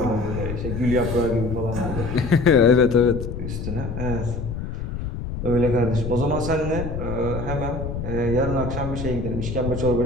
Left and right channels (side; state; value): left; noise; rumble, 6 dB below the sound